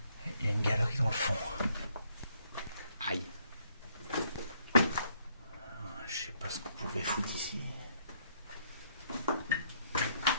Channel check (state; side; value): inverted; both; correlation -0.69